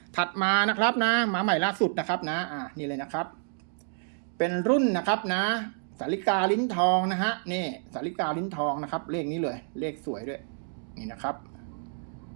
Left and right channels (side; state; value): left; silent; digital silence